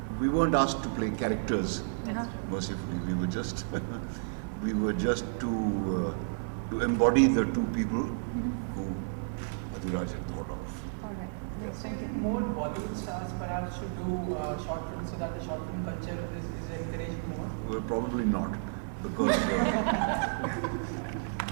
we weren't asked to play characters. Mercifully, we were just to embody the two people who Adhiraj had thought of. All right. Yes, So thank you. more Bollywood stars perhaps should do short films so that the short film culture is encouraged more? Well, probably not, because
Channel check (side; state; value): left; silent; digital silence